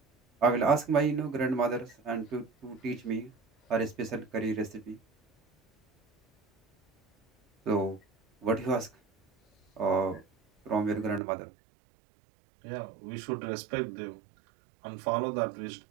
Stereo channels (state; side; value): drops out; left; at 11.2 s